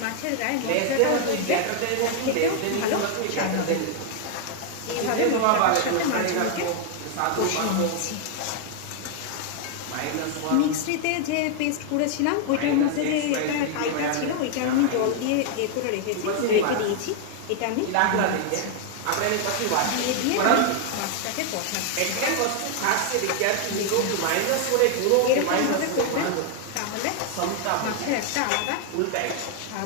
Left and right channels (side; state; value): both; different; correlation 0.00